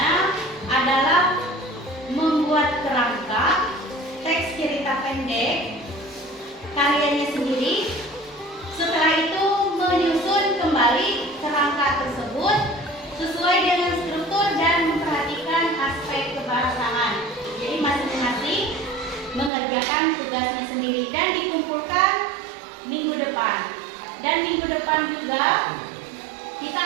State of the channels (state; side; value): drops out; left; at 19.5 s